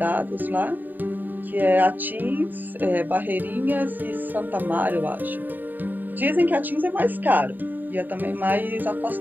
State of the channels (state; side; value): late; left; 0.089 ms